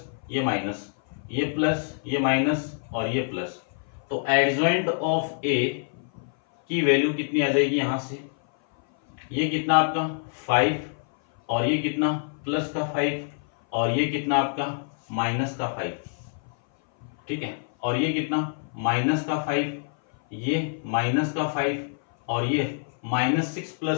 ये माइनस, ये प्लस, ये माइनस और ये प्लस। तो एडजॉइंट ऑफ ए की वैल्यू कितनी आ जाएगी यहां से, ये कितना आपका 5 और ये कितना प्लस का 5 और ये कितना आपका माइनस का 5। ठीक है, और ये कितना -5, ये -5 और ये -6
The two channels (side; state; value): right; silent; 57 dB below the other